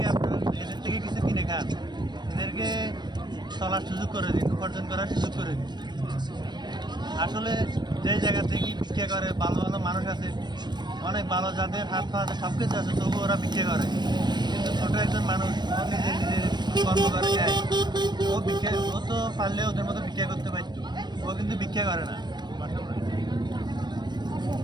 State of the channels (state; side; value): late; left; 0.21 ms